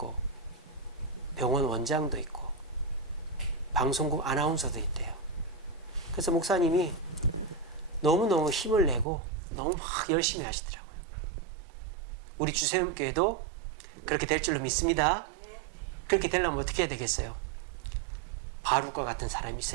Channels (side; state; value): left; drops out; at 9.1 s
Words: 병원 원장도 있고 방송국 아나운서도 있대요. 그래서 목사님이 너무너무 힘을 내고 너무 막 열심히 하시더라고요. 우리 주세음교회도 그렇게 될 줄로 믿습니다. 그렇게 되려면 어떻게 해야 되겠어요? 바룩과 같은 사람이